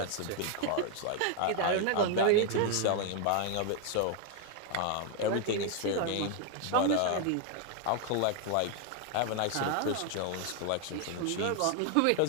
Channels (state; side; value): different; both; correlation 0.00